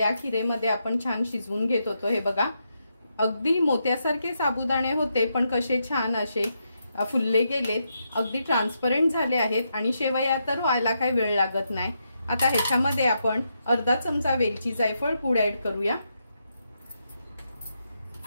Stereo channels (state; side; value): inverted; both; correlation -0.82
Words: खीरेमध्ये आपण छान शिजवून घेत होतो। हे बघा अगदी मोत्यासारखे साबुदाणे होते पण कसे छान असे फुलले गेलेत, अगदी ट्रान्सपरंट झाले आहेत आणि शेवया तर व्हायला काही वेळ लागत नाही। आता ह्याच्यामध्ये आपण अर्धा चमचा वेलची जायफळ पूड ऍड करूया।